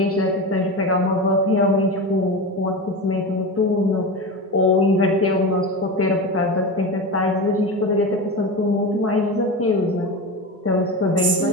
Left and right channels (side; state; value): both; normal; correlation 0.24